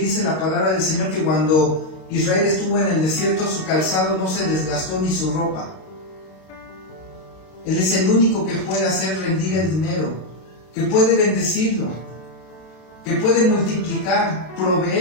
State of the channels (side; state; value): right; late; 32 ms